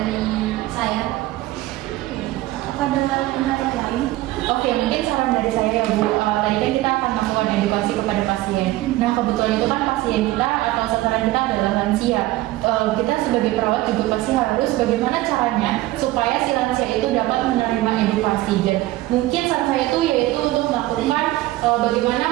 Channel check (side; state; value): left; quieter; 17.2 dB